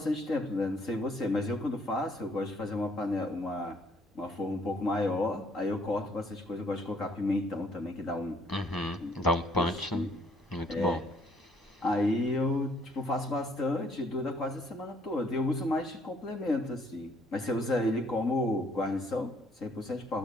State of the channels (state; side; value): normal; both; correlation 0.64